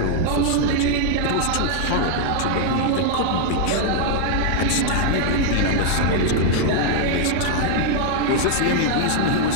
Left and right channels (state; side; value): different; both; correlation 0.00